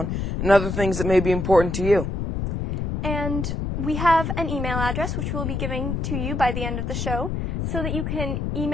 and other things that may be important to you. And we have an email address which we'll be giving to you by the end of the show so that you can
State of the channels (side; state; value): left; noise; rumble, 2 dB below the sound